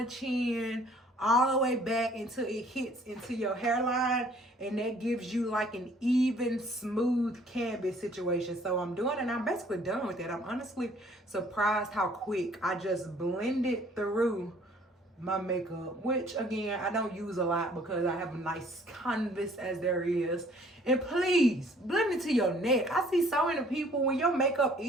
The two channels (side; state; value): both; normal; correlation 0.58